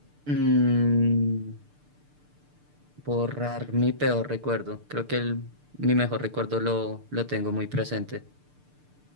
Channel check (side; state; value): left; late; 6.7 ms